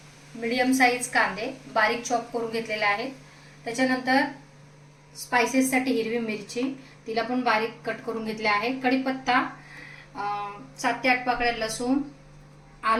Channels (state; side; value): identical; both; correlation 1.00